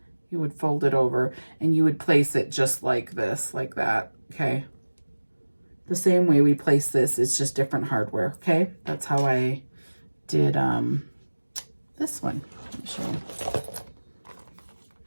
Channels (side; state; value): both; inverted; correlation -1.00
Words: You would fold it over and you would place it just like this, like that, okay? The same way we place this, it's just different hardware, okay? That's how I did this one. Let me show you.